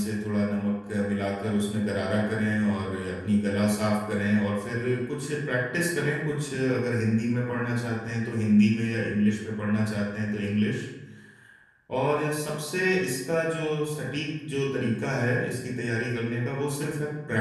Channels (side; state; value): both; identical; correlation 1.00